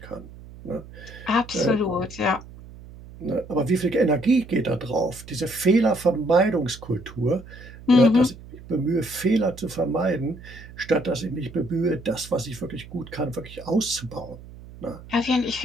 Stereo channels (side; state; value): right; noise; hum, 17 dB below the sound